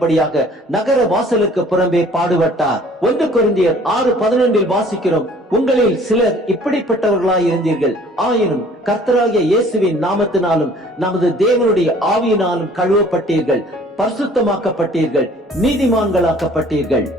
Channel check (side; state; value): both; normal; correlation 0.53